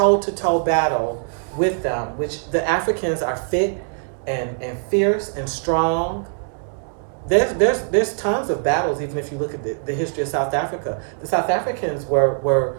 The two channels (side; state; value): left; silent; 62 dB below the other